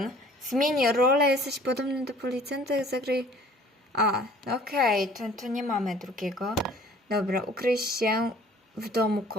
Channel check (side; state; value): both; normal; correlation 0.52